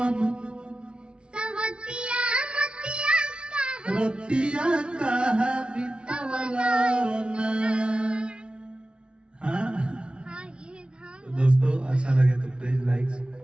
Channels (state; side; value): late; left; 0.056 ms